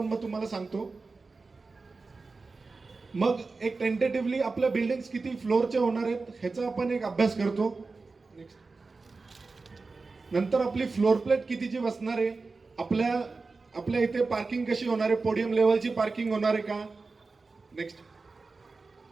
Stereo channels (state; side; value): quieter; left; 4.0 dB